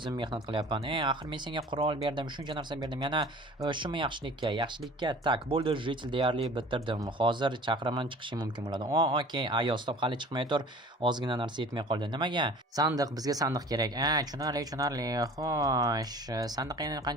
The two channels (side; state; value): both; normal; correlation 0.44